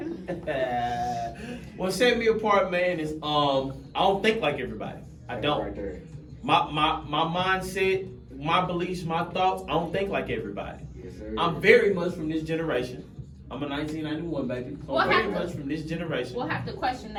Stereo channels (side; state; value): both; identical; correlation 1.00